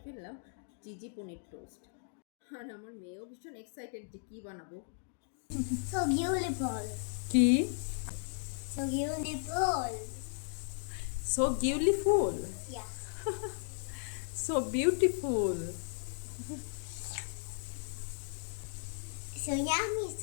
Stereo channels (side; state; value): right; silent; digital silence